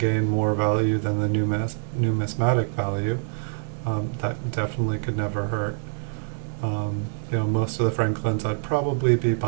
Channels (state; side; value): silent; left; 62 dB below the other